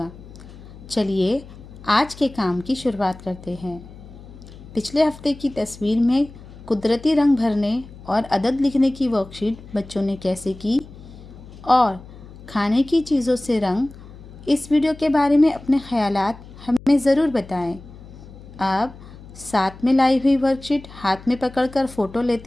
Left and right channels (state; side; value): noise; left; hum, 18 dB below the sound